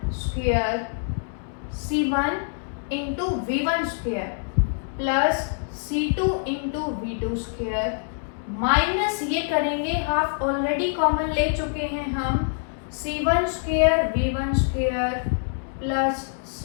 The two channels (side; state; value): right; silent; digital silence